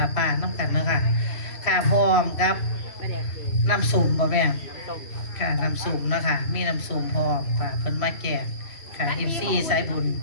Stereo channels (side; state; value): right; late; 3.0 ms